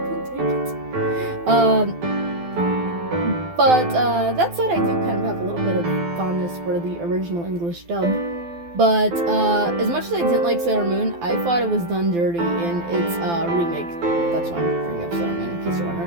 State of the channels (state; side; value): late; left; 12 ms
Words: take it. But that said, I do kind of have a little bit of fondness for the original English dub. But as much as I didn't like Sailor Moon, I thought it was done dirty in its remake. That's why I'm bringing up Sailor Moon, in case you're